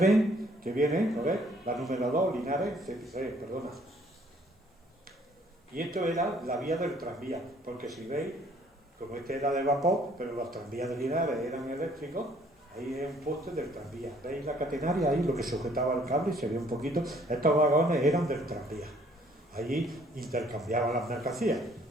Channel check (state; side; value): normal; both; correlation 0.61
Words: que viene, ¿no ves? La número 2, Linares, perdona. Y esto era la vía del tranvía, porque si veis, como este era de vapor, pero los tranvías de Linares eran eléctricos, ahí es un poste del tranvía. ¿Veis la catenaria ahí, lo que sujetaba el cable? Se ve un poquito. Estos vagones eran del tranvía. Allí intercambiaban las mercancías.